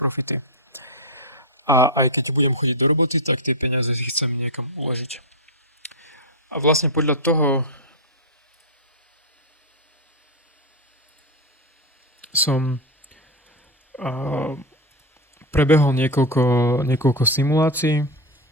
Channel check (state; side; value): normal; both; correlation 0.07